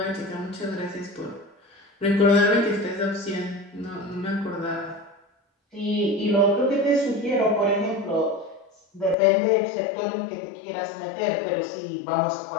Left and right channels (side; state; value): right; drops out; at 9.2 s